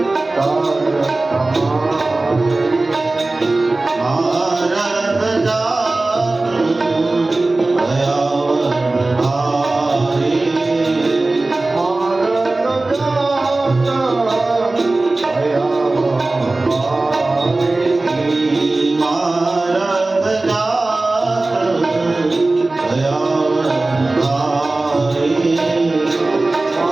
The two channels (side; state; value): left; quieter; 3.1 dB